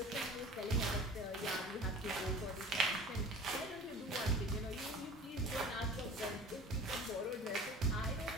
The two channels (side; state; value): both; normal; correlation 0.41